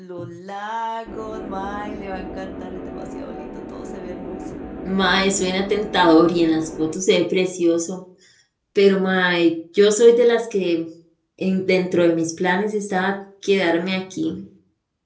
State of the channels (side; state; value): both; identical; correlation 1.00